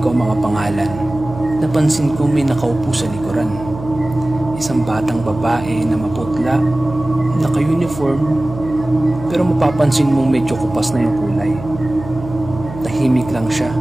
ang mga pangalan, napansin ko may nakaupo sa likuran. Isang batang babae na maputla, naka-uniform, pero mapapansin mong medyo kupas na yung kulay. Tahimik lang siya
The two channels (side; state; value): right; noise; hum, 12 dB below the sound